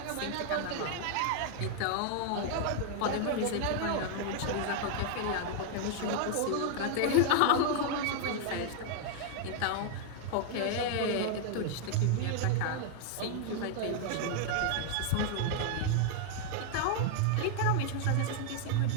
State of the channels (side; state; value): both; different; correlation -0.01